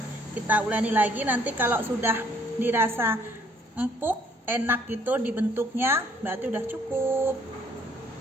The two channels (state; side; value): normal; both; correlation 0.63